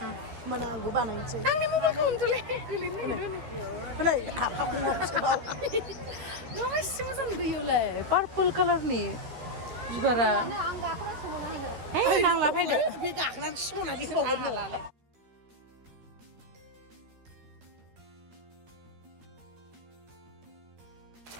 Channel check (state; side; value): late; left; 13 ms